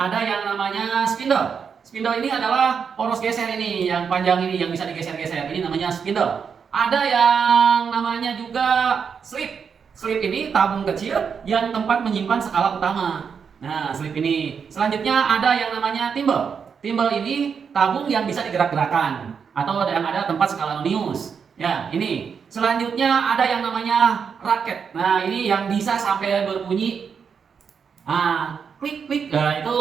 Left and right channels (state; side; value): quieter; left; 6.5 dB